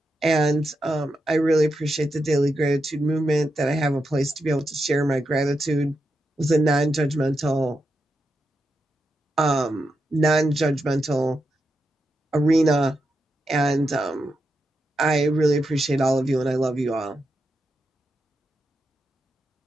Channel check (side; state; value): both; normal; correlation 0.86